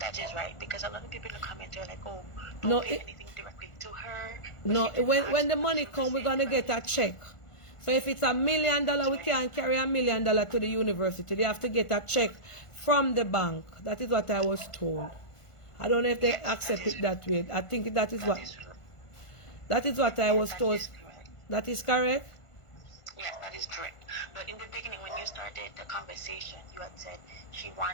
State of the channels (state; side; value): late; right; 1.5 ms